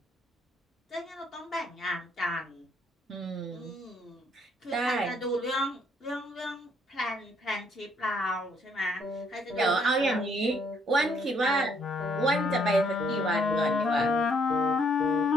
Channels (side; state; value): both; normal; correlation 0.69